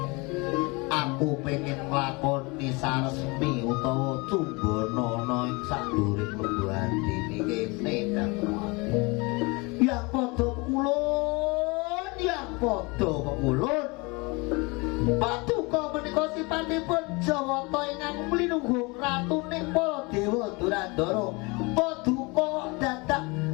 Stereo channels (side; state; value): right; quieter; 27.4 dB